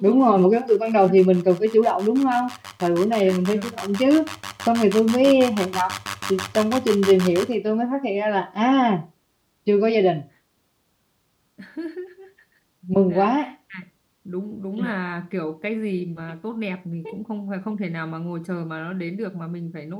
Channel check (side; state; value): both; identical; correlation 1.00